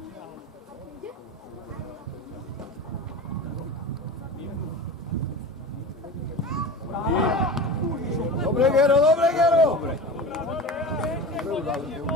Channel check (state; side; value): normal; both; correlation 0.31